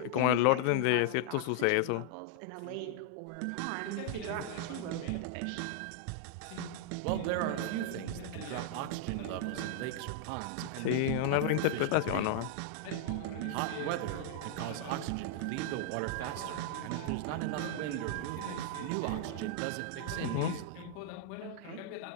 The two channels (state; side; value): different; both; correlation -0.01